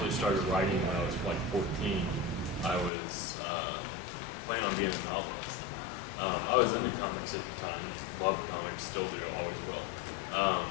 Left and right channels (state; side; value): drops out; right; at 2.9 s